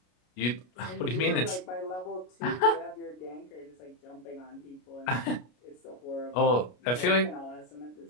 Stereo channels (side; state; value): right; late; 33 ms